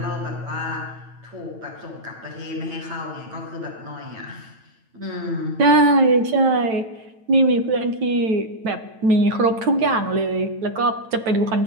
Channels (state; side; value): late; left; 9.1 ms